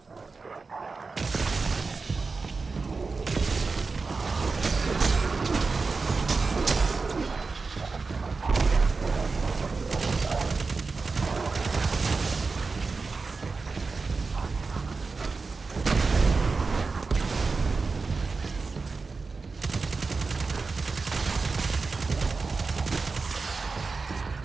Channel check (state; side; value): quieter; left; 4.3 dB